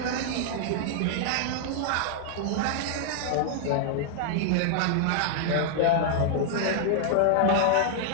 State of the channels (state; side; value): different; both; correlation 0.00